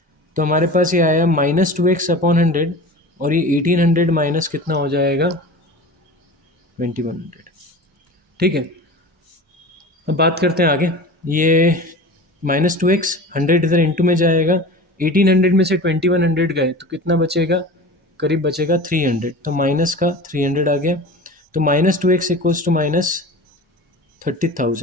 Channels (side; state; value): both; normal; correlation 0.35